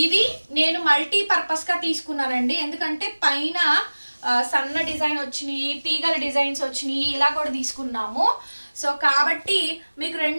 ఇవి నేను మల్టీపర్పస్గా తీసుకున్నానండి. ఎందుకంటే పైన సన్న డిజైన్ వచ్చినాయి, తీగల డిజైన్స్ వచ్చినాయి, ఇలా కూడా తీసుకున్నాము. సో కాబట్టి మీకు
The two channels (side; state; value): both; inverted; correlation -1.00